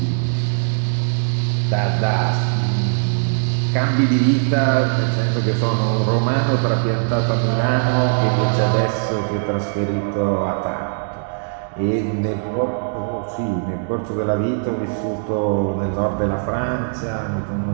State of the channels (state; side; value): silent; left; digital silence